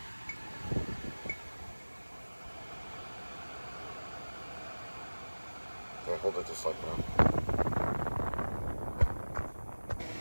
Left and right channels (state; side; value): inverted; both; correlation -1.00